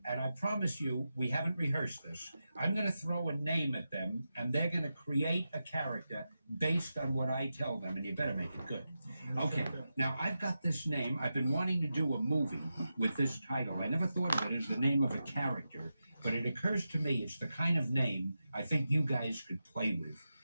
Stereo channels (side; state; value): both; inverted; correlation -0.90